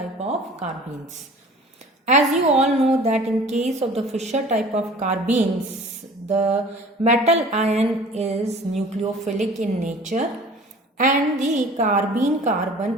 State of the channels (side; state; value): both; normal; correlation 0.45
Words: of carbines. As you all know that in case of the Fisher type of carbines, the metal ion is nucleophilic in nature and the carbene